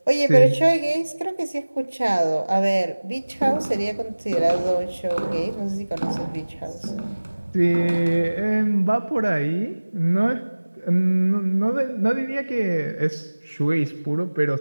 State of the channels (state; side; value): inverted; both; correlation -1.00